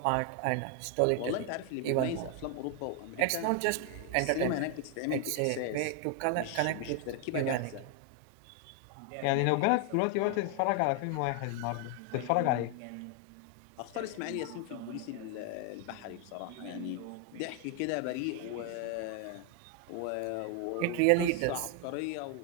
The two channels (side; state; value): both; different; correlation 0.00